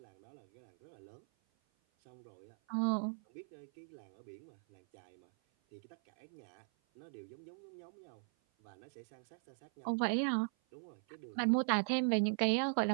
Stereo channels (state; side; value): silent; left; 51 dB below the other